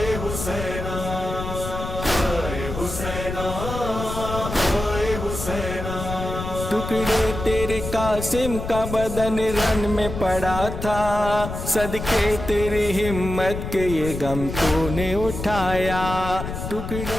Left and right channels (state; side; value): noise; left; rumble, 6 dB below the sound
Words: हुसैना हाय हुसैना हाय हुसैना। टुकड़े तेरे कासिम का बदन रन में पड़ा था, सदके तेरी हिम्मत के ये गम तूने उठाया।